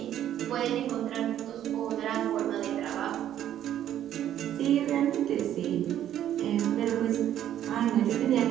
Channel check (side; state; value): left; quieter; 11.2 dB